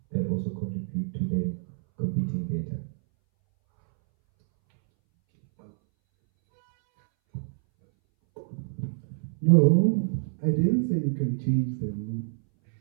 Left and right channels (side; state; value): left; silent; 60 dB below the other